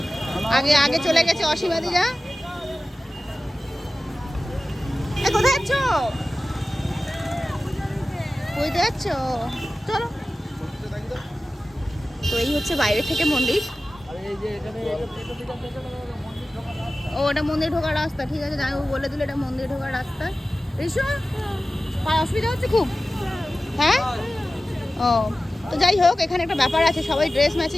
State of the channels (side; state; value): both; normal; correlation 0.95